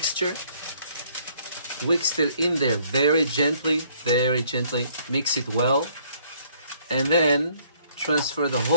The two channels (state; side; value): inverted; both; correlation -0.63